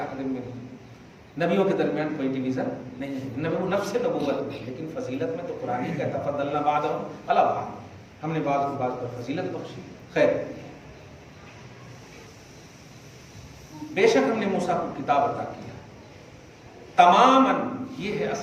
منہم. نبیوں کے درمیان کوئی ڈویژن نہیں ہے، نفس نبوت میں. لیکن فضیلت میں تو قرآن ہی کہتا فضلنا بعضهم علی بعض، ہم نے بعض کو بعض پر فضیلت بخشی. خیر، بے شک ہم نے موسیٰ کو کتاب عطا کیا تماماً. یہ ہے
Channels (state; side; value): identical; both; correlation 1.00